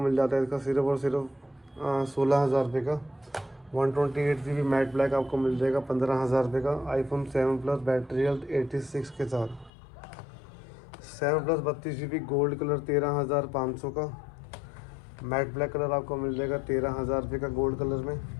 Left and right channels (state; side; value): drops out; right; at 9.7 s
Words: मिल जाता है इसका सिर्फ और सिर्फ 16,000 का। 128GB मैट ब्लैक आपको मिल जाएगा 15,000 का। iPhone 7 प्लस बैटरी हेल्थ 86 के साथ। 7 प्लस 32GB गोल्ड कलर 13,500 का। मैट ब्लैक कलर आपको मिल जाएगा 13,000 का गोल्ड कलर में।